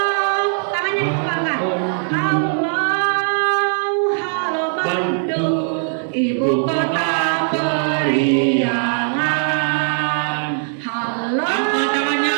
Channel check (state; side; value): silent; left; digital silence